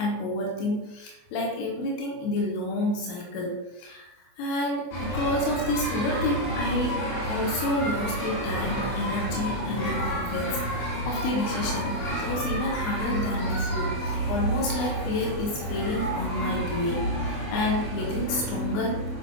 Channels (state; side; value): late; right; 24 ms